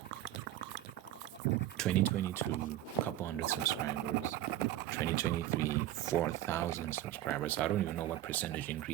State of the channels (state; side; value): quieter; left; 13.9 dB